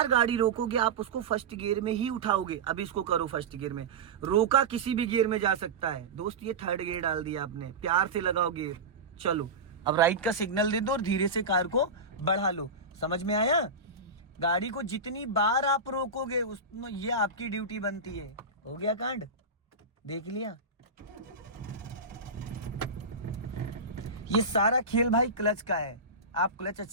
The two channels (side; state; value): left; quieter; 3.5 dB